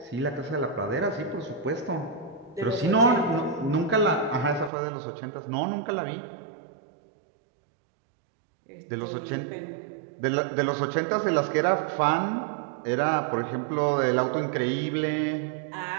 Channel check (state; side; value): drops out; left; at 4.7 s